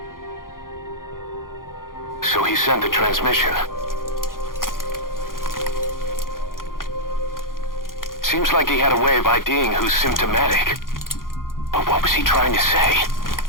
So he sent the transmission. Seems like he had a way of IDing who's symptomatic. But what was he trying to say?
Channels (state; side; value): late; right; 0.90 ms